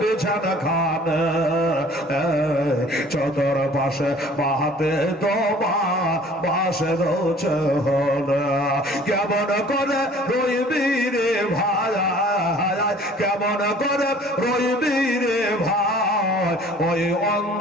খান, চতর পাশে মাহাতে তোমার বাসে রোছে হল। কেমন করে রইবি রে ভাই, কেমন করে রইবি রে ভাই ওই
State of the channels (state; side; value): normal; both; correlation 0.51